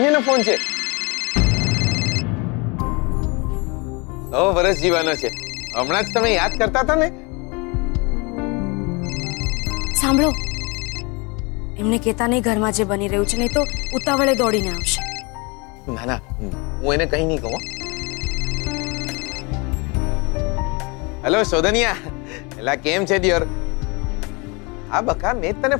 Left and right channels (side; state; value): right; quieter; 28.9 dB